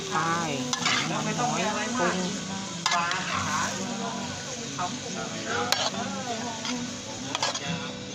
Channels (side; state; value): both; identical; correlation 1.00